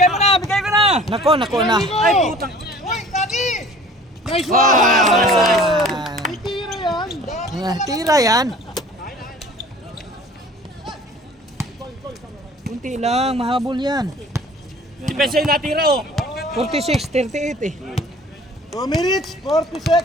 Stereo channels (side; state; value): both; normal; correlation 0.48